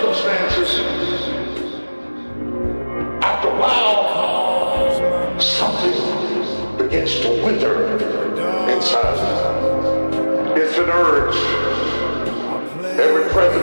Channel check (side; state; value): both; inverted; correlation -1.00